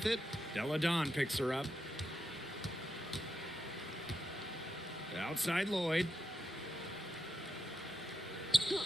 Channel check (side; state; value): both; normal; correlation 0.85